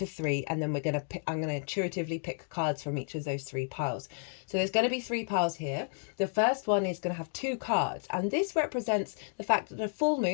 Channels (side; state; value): right; silent; digital silence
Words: 3, and then I'm going to intuitively pick cards from each of those 3 piles. So there's going to be 3 piles here. The first one is going to have 2 cards, and this represents the fact that a full